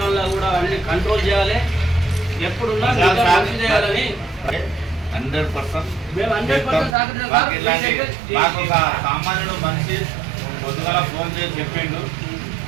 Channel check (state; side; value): drops out; left; at 7.0 s